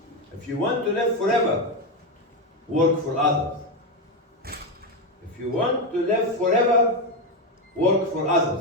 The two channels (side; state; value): both; normal; correlation 0.10